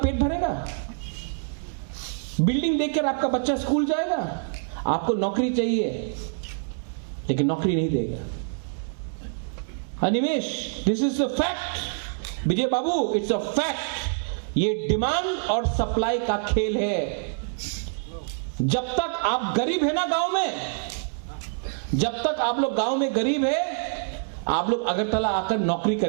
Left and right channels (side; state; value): left; silent; digital silence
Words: भरेगा? बिल्डिंग देखकर आपका बच्चा स्कूल जाएगा? आपको नौकरी चाहिए, लेकिन नौकरी नहीं देगा। Animesh, this is a fact. Vijay Babu, it's a fact. ये डिमांड और सप्लाई का खेल है। जब तक आप गरीब है ना गांव में, जब तक आप लोग गांव में गरीब है, आप लोग अगरतला आकर नौकरी